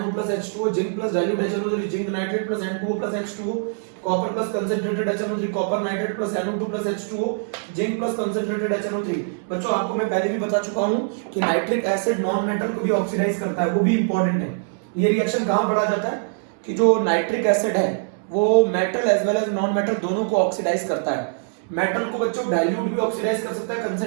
plus H2O, zinc plus dilute HNO3, zinc nitrate plus N2O plus H2O, copper plus concentrated HNO3, copper nitrate plus NO2 plus H2O, zinc plus concentrated HNO3। बच्चों आपको मैं पहले भी बता चुका हूं कि nitric acid non metal को भी ऑक्सीडाइज करता है, वो भी इंपॉर्टेंट है। ये रिएक्शन कहां पढ़ा जाता है कि जो नाइट्रिक एसिड है वो metal as well as non metal दोनों को ऑक्सीडाइज करता है। मेटल को बच्चों डाइल्यूट भी ऑक्सीडाइज कर सकता है,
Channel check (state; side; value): silent; left; digital silence